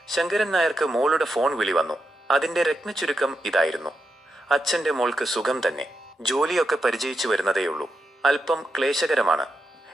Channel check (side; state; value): both; normal; correlation 0.86